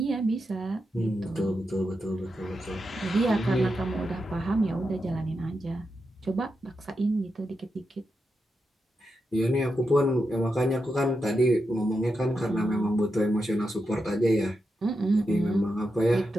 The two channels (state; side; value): normal; both; correlation 0.87